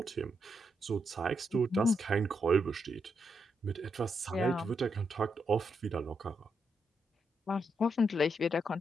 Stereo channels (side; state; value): both; normal; correlation 0.81